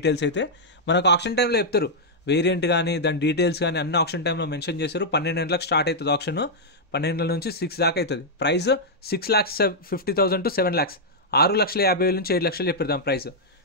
అయితే మనకు ఆప్షన్ టైంలో చెప్తారు. వేరియంట్ కానీ దాని డీటెయిల్స్ కానీ అన్ని ఆప్షన్ టైంలో మెన్షన్ చేశారు. 12 గంటలకు స్టార్ట్ అవుతుంది ఆప్షన్, 12 గంటల నుంచి 6 దాకా అవుతుంది. ప్రైస్ 6,50,000 to 7 lakhs, 6,50,000 నుంచి 7 లక్షలు చెప్పారు దాని ప్రైస్.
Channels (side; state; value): both; normal; correlation -0.06